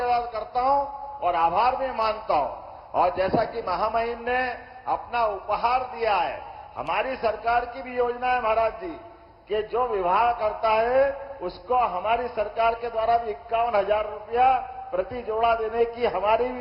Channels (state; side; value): identical; both; correlation 1.00